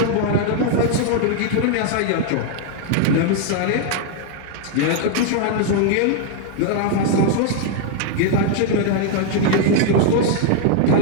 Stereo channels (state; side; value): different; both; correlation 0.00